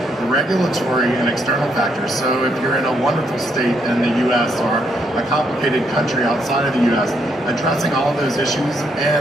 regulatory and external factors. So if you're in a wonderful state in the US or a complicated country outside of the US, addressing all of those issues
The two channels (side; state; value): both; normal; correlation 0.74